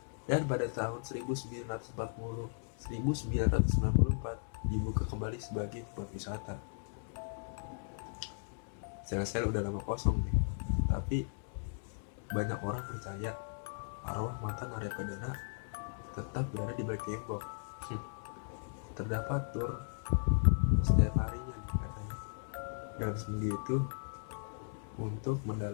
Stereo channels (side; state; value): right; silent; digital silence